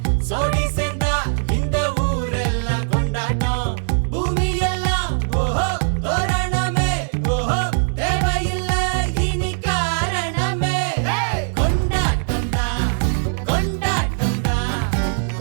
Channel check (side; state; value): left; silent; digital silence